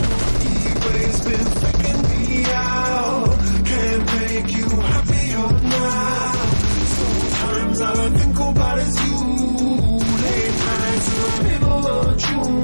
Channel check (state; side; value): inverted; both; correlation -1.00